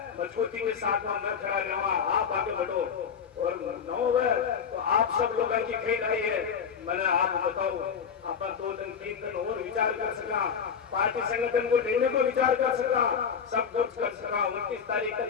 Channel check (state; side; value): quieter; right; 6.9 dB